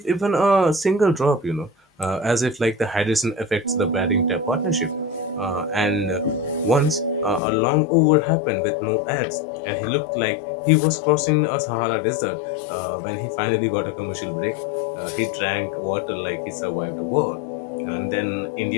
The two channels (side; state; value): right; drops out; at 7.4 s